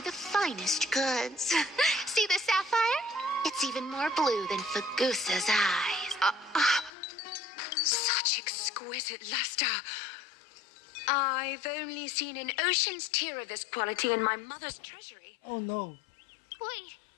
the finest goods. See the sapphire? It's even more blue than Fagusa's eyes. Such exquisite luster. I've only seen an ocean's tear of this quality in my mother's treasury. Oh no. Wait.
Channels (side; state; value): right; drops out; at 6.9 s